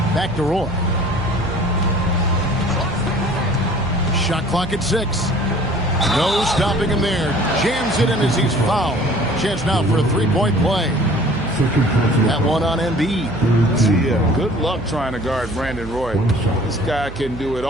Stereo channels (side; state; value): right; noise; hum, 12 dB below the sound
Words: Back to Roy. Shot clock at 6. No stopping him there. Jams it in as he's fouled. Chance now for a three-point play. That one on Embiid. Yeah, good luck trying to guard Brandon Roy. This guy can do it